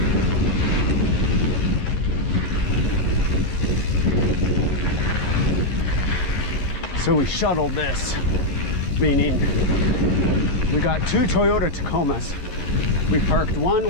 So we shuttled this, meaning we got 2 Toyota Tacomas. We parked one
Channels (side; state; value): right; late; 11 ms